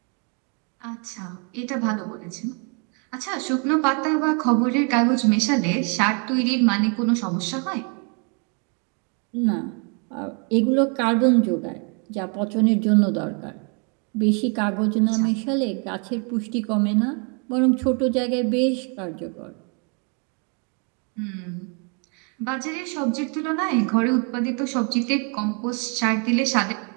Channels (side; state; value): left; quieter; 37.2 dB